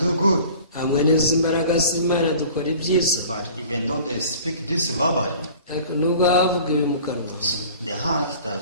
good. Hamwe n'izi mbaraga z'Imana dukora ibyiza. But even though they speak this verbally, ariko nubwo bavuga ibi mu kanwa, the heart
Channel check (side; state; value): both; inverted; correlation -0.45